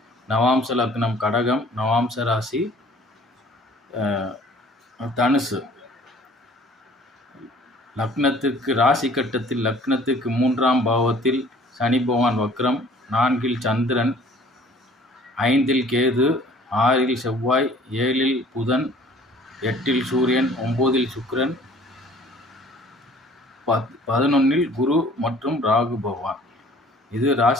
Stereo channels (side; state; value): both; normal; correlation 0.53